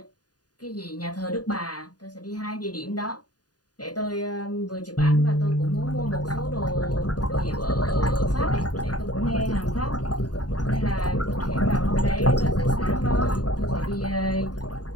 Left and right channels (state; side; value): late; right; 0.69 ms